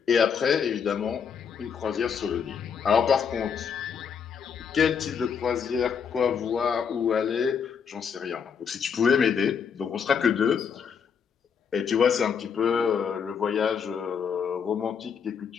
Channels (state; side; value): quieter; right; 6.8 dB